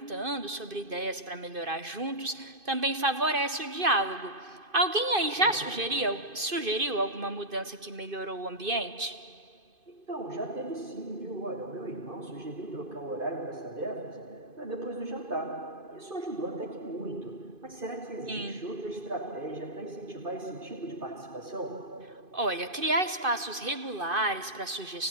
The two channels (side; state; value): left; late; 2.5 ms